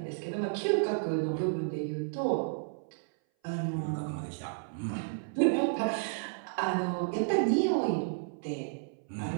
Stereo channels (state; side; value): silent; left; 56 dB below the other